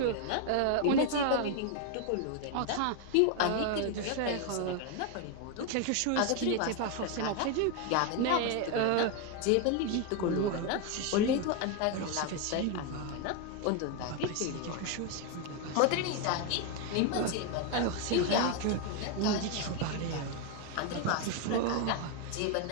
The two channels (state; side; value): different; both; correlation 0.01